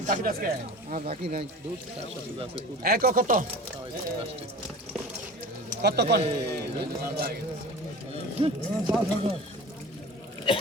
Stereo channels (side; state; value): both; normal; correlation 0.37